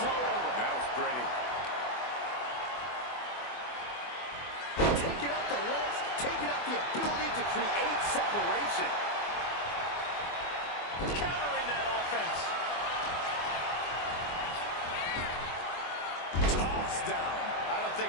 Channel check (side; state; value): right; late; 24 ms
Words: over. That was pretty. Taking out the legs, taking out the ability to create separation. Countering that offense. Tossed down. I don't